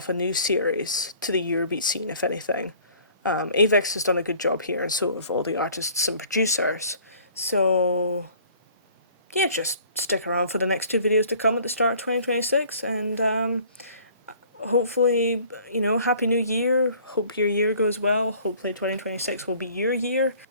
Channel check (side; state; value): both; inverted; correlation -0.53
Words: a new series to the Eurobeat scene, if anything. Avex has done a good job here, and so have all the artists and producers. So, yeah, just stick around for the next 2 videos to come at the start of 2026, and hopefully, Happy New Year. Hope your year goes well. Hopefully 2026 will be your year.